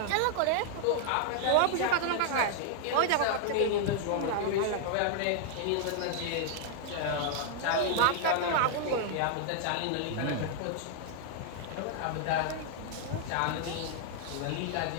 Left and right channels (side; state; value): both; different; correlation 0.00